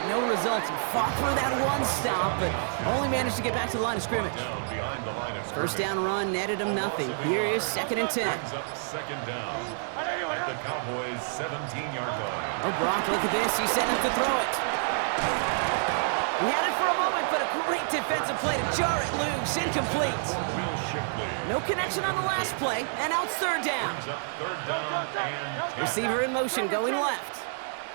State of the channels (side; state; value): left; silent; digital silence